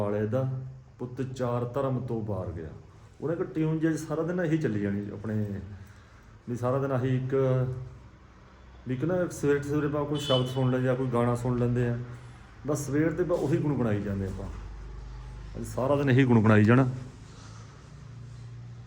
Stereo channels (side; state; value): both; identical; correlation 1.00